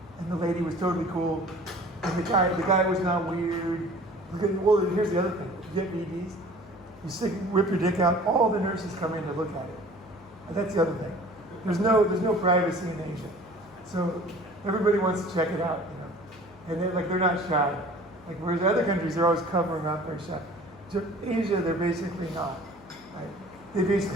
and the lady was totally cool. And the guy was not weird. Well, here's the other thing. You get VDs, you whip your dick out, all the nurses come in to look at it. And that's the other thing. There's no privacy in Asia. So everybody wants to check it out, you know. And they're not shy. Like whereas other countries, they're always covering up their shy. Asia, they're basically not. Right?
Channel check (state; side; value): noise; left; hum, 23 dB below the sound